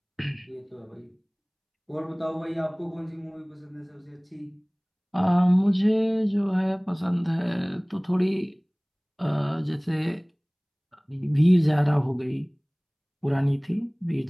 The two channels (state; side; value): identical; both; correlation 1.00